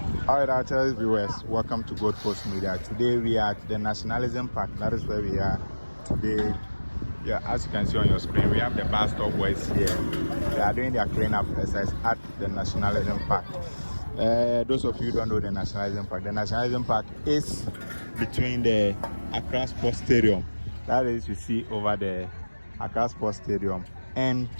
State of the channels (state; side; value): inverted; both; correlation -1.00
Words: Alright, our channel viewers, welcome to Gold Coast Media. Today we are at the Nationalism Park. That is where we are today. Yeah, as you can see on your screen, we have the BuzStop Boys here. They are doing their cleanup exercise at the Nationalism Park. Those of you who don't know the Nationalism Park is between the Accra Sports Stadium. That is, you see over the Accra Sports Stadium and